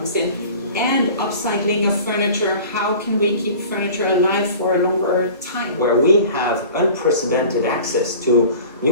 in. And upcycling of furniture, how can we keep furniture alive for a longer time? Where we have unprecedented access to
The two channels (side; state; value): both; inverted; correlation -0.42